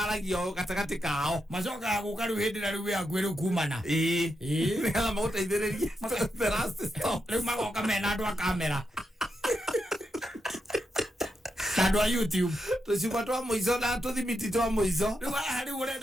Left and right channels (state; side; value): normal; both; correlation 0.85